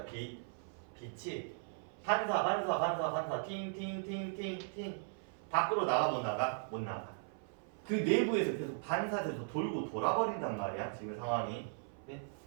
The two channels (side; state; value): left; silent; 53 dB below the other